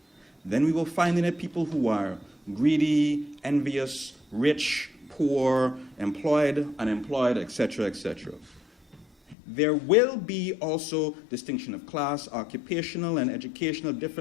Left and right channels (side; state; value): right; drops out; at 9.3 s